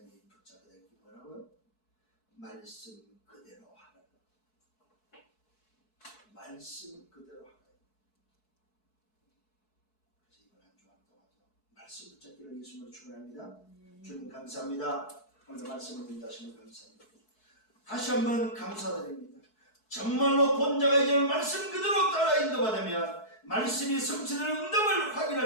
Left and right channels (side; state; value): right; late; 4.6 ms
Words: 붙잡게 될 게 뭐라고요? 말씀 그대로 하라. 말씀 그대로 하라. 그래서 이번 한 주간 동안도 말씀 붙잡기를 예수님으로 축원합니다. 주님 감사합니다. 오늘 말씀을 인도하시면 감사합니다. 다시 한번 감사드립니다. 정말로 본자가 이제는 말씀 그대로 따라 인도받으면 말씀이 성취되는 응답을